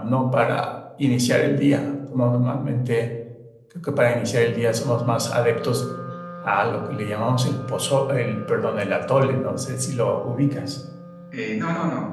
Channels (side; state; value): both; identical; correlation 1.00